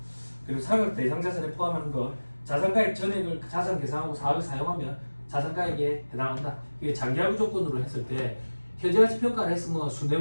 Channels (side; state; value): both; inverted; correlation -1.00